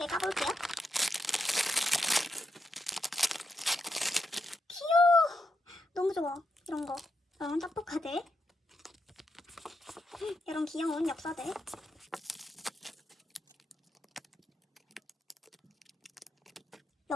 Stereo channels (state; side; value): normal; both; correlation 0.83